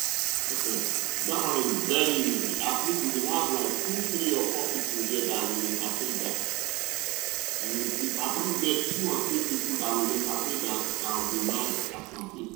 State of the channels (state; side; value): quieter; left; 23.5 dB